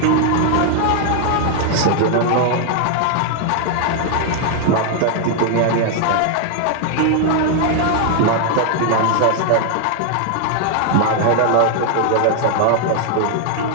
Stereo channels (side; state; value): both; different; correlation 0.00